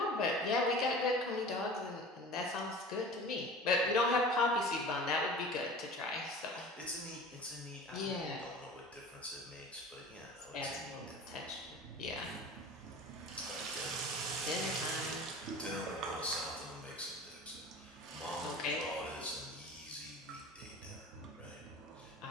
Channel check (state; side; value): normal; both; correlation 0.39